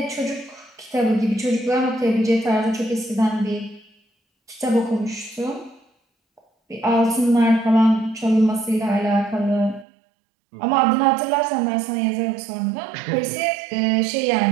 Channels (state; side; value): drops out; left; at 9.9 s